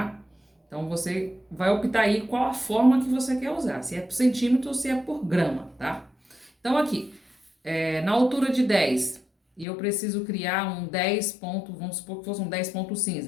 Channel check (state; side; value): drops out; right; at 9.7 s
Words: Então, você vai optar aí qual a forma que você quer usar, se é por centímetro ou se é por grama, tá? Então, aqui, na altura de 10, e eu preciso criar um 10 ponto, vamos supor que fosse um 10 ponto